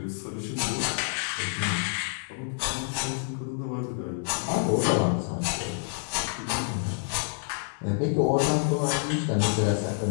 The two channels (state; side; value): silent; right; digital silence